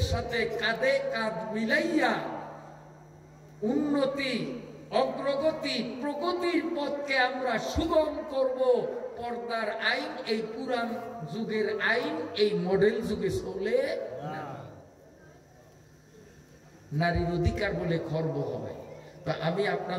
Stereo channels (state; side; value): identical; both; correlation 1.00